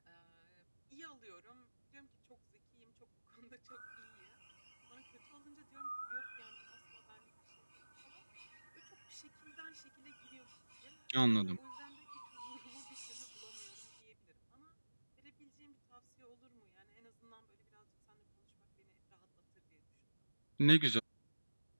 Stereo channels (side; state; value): both; inverted; correlation -1.00